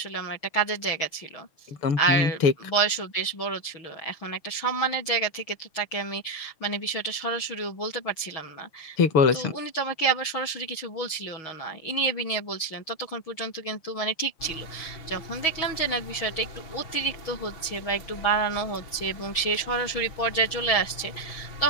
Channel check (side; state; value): right; late; 6.3 ms